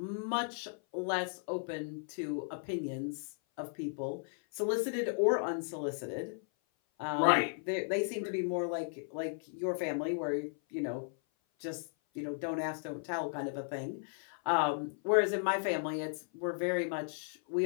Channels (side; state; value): right; silent; 54 dB below the other